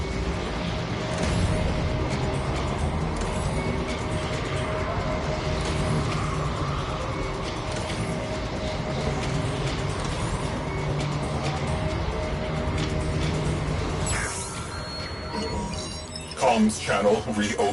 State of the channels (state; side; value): identical; both; correlation 1.00